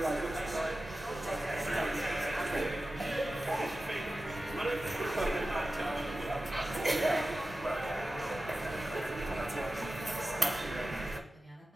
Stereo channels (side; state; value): both; normal; correlation 0.94